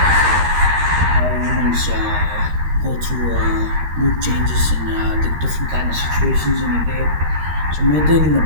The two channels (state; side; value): late; left; 13 ms